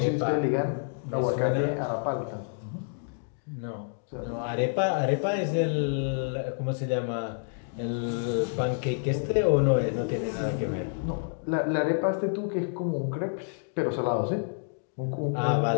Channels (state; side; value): silent; right; digital silence